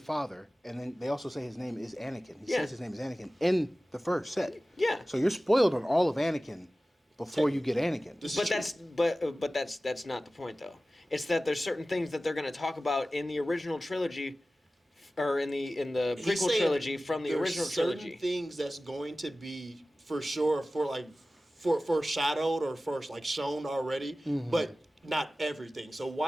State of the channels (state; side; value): normal; both; correlation 0.96